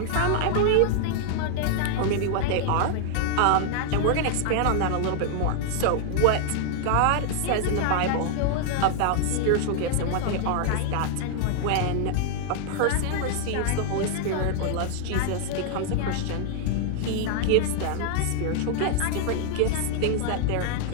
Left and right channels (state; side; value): different; both; correlation 0.00